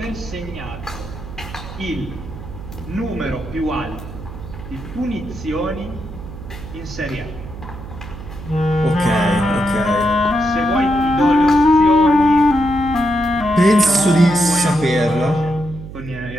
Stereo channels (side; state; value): right; noise; hum, 12 dB below the sound